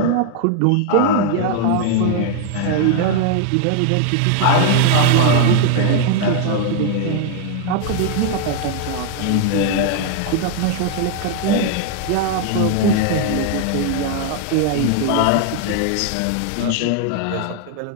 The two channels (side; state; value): both; different; correlation 0.00